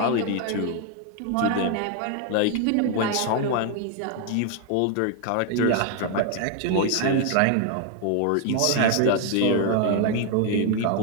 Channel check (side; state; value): both; different; correlation 0.01